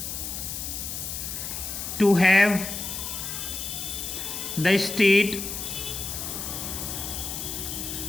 to have the state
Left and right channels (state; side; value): noise; left; hiss, 5 dB below the sound